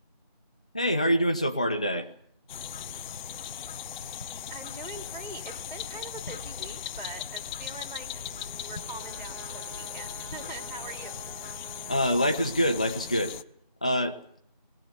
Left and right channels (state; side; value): inverted; both; correlation -0.65